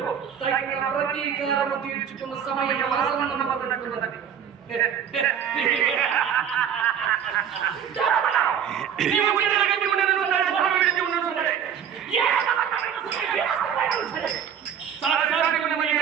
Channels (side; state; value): left; quieter; 8.5 dB